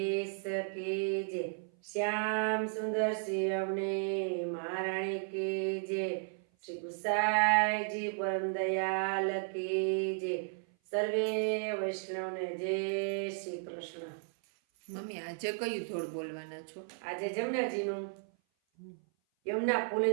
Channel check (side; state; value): left; silent; 55 dB below the other